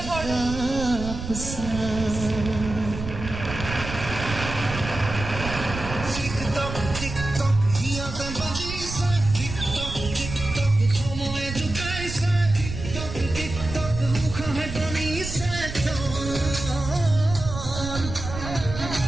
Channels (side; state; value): right; noise; rumble, 8 dB below the sound